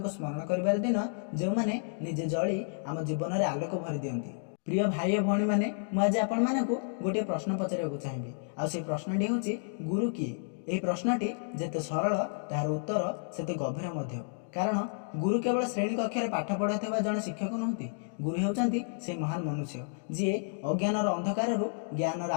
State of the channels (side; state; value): right; silent; digital silence